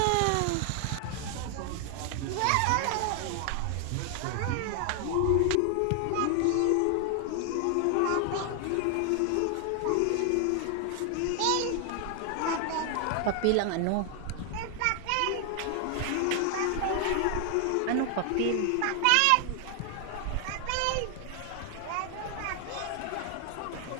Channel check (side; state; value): both; different; correlation 0.00